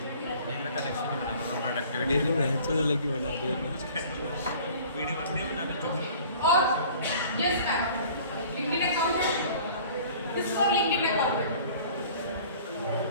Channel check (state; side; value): inverted; both; correlation -0.49